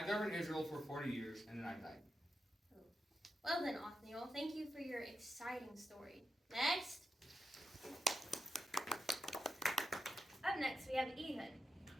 governed Israel for 40 years, and then I died. Oh. Well then, Othniel, thank you for your exciting story. Next! Up next, we have Ehud.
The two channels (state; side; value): normal; both; correlation 0.87